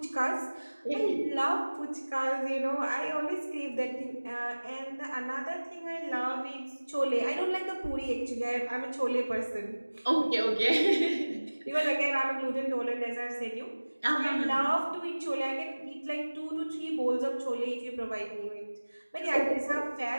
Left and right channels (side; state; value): both; inverted; correlation -1.00